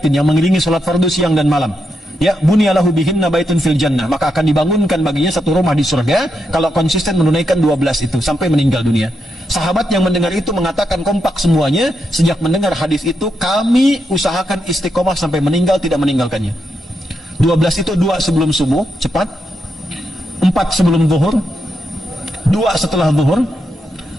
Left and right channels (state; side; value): normal; both; correlation 0.83